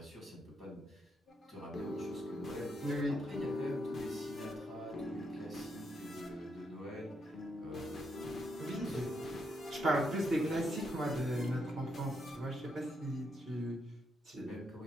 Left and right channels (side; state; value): both; normal; correlation 0.79